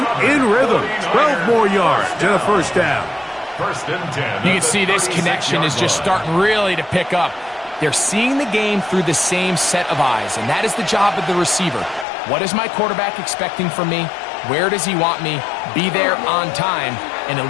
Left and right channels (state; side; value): drops out; right; at 12.1 s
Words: in rhythm. 12 more yards and a first down. First and 10. You can see this connection is just starting really to pick up. They're seeing the game through the same set of eyes, and that is the job of the receiver. What is my quarterback expecting from me? Where does he want me? Be there on time, and it